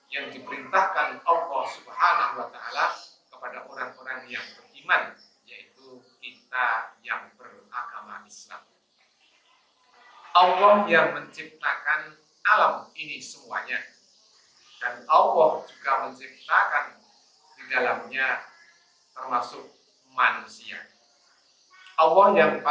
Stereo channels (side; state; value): both; identical; correlation 1.00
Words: yang diperintahkan Allah Subhanahu wa taala kepada orang-orang yang beriman, yaitu kita yang beragama Islam. Allah yang menciptakan alam ini semuanya. Dan Allah juga menciptakan di dalamnya termasuk manusia. Allah yang